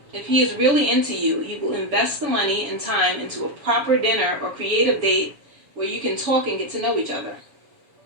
If he is really into you, he will invest the money and time into a proper dinner or creative date where you can talk and get to know each other.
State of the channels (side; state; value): left; late; 7.1 ms